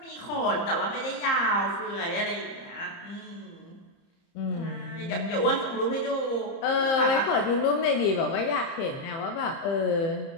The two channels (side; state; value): right; late; 30 ms